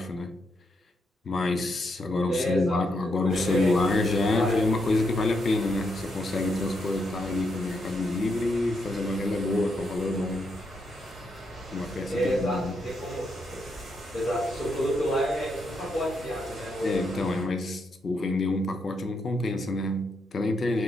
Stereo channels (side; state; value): both; normal; correlation 0.80